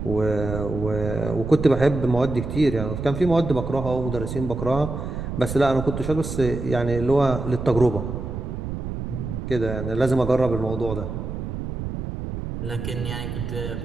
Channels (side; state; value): right; noise; rumble, 6 dB below the sound